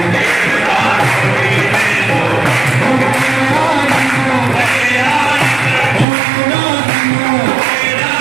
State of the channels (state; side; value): drops out; left; at 6.1 s